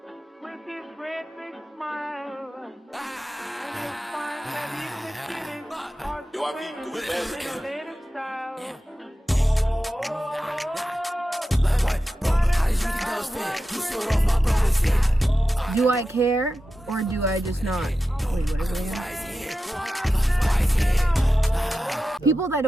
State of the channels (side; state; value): both; normal; correlation 0.92